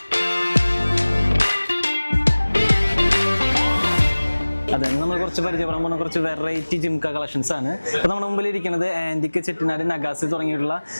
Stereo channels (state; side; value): inverted; both; correlation -1.00